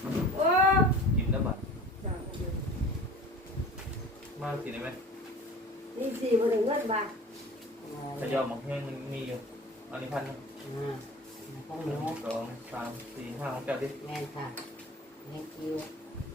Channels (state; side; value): normal; both; correlation 0.40